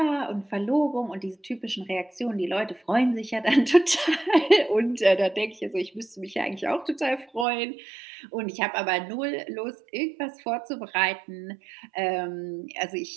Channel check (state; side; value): drops out; left; at 7.5 s